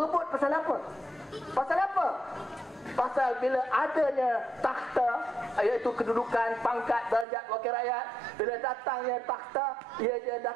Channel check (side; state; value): left; drops out; at 7.2 s